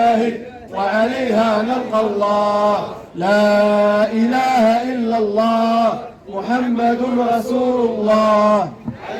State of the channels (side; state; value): both; identical; correlation 1.00